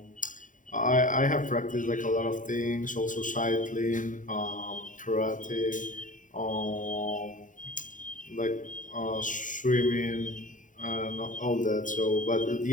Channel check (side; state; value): right; late; 0.38 ms